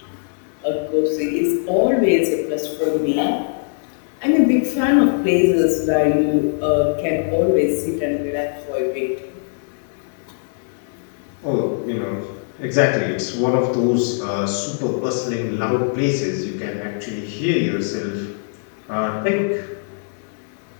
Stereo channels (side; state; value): right; silent; digital silence